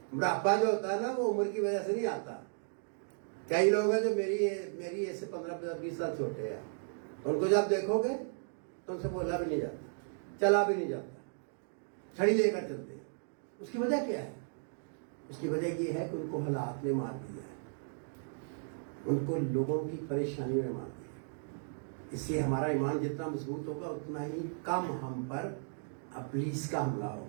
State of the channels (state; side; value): silent; left; digital silence